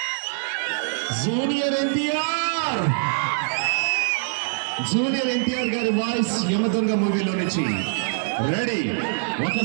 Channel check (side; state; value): left; silent; digital silence